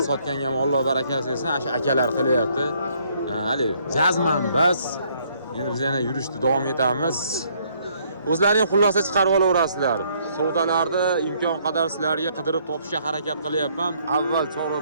sotganga ham Alloh barakasi bersin, o'sha akalar qilyapti. Hali jazman bas. Endi biz yana yurishni davom etamiz. O'zlaring xulosa chiqarib olaverasizlar. Savdolarni imkon qadar sizlarga qidirib topishga harakat qilyapman. Avval Chorva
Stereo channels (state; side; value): inverted; both; correlation -0.66